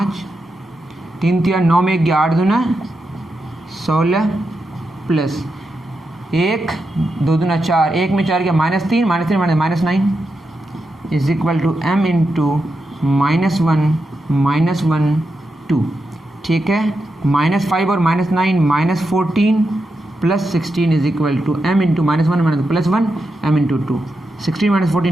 3 3 9 में गया 8 दूना 16 प्लस 1 2 दूना 4, 1 में 4 गया minus 3 minus 9 is equal to m into minus 1 2, ठीक है। माइनस 5 और minus 9 minus 14 plus 16 is equal to m into -1 minus plus 1 m into 2, 16 minus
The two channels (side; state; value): both; normal; correlation 0.87